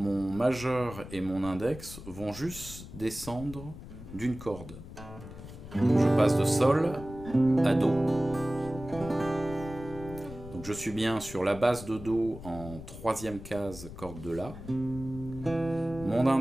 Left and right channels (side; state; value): left; noise; rumble, 13 dB below the sound